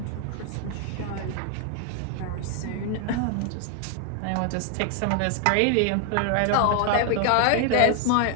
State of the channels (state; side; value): different; both; correlation 0.00